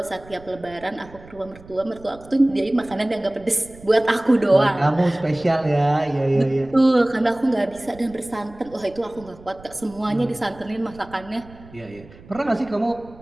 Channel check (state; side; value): noise; right; rumble, 21 dB below the sound